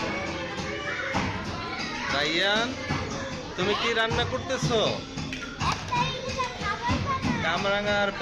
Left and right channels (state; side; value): identical; both; correlation 1.00